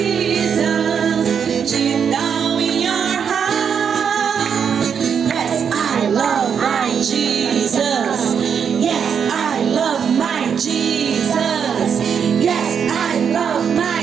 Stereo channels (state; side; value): quieter; left; 7.2 dB